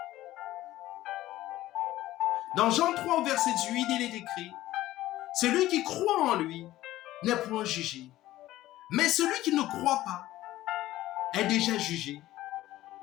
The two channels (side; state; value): right; quieter; 15.4 dB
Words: Dans Jean 3, verset 8, il est écrit, « Celui qui croit en lui n'est point jugé, mais celui qui ne croit pas est déjà jugé,